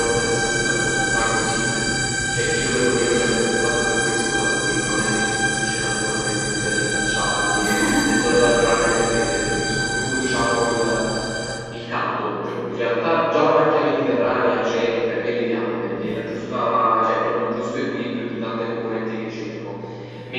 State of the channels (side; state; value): both; identical; correlation 1.00